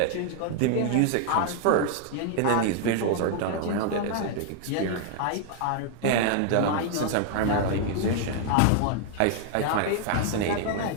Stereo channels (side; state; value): both; different; correlation 0.00